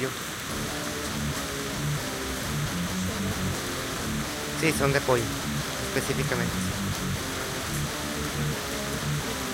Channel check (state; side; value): identical; both; correlation 1.00